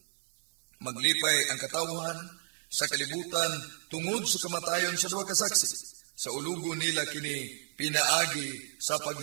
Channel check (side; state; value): left; silent; 56 dB below the other